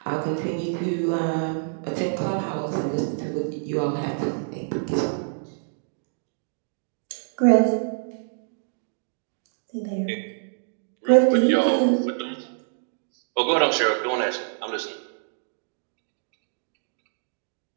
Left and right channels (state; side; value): silent; left; digital silence